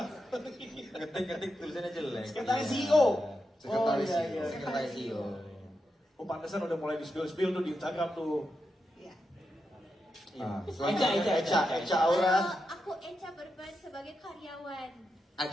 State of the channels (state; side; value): normal; both; correlation 0.87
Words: Ngetik tulisannya jelek. Sekretaris CEO. Sekretaris oh, iya, CEO. iya. Sekretaris CEO. Oh, pantesan udah mulai di-spill tuh di Instagram tuh. Iya. Ah, Eca Aura. Aku Eca berperan sebagai karyawan.